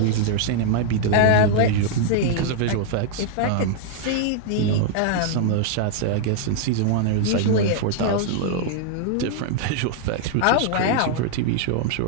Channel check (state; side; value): different; both; correlation 0.00